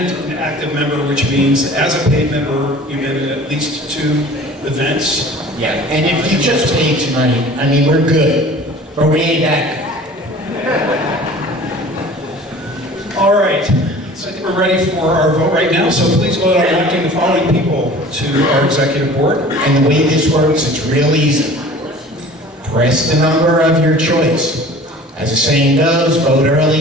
an active member, which means as a paid member, you've been at at least 2 events. Yeah. And if you just paid tonight, I mean, we're good, but we ain't that All right, so I think we're ready for our vote right now, so please vote on electing the following people to our executive board. good. And the way this works, it's real easy. Press the number of your choice. As the saying goes, vote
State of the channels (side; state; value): both; normal; correlation 0.44